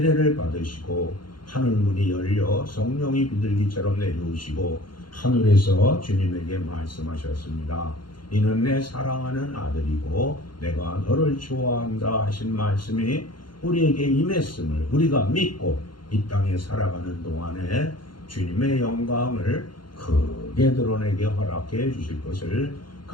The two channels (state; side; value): late; right; 0.72 ms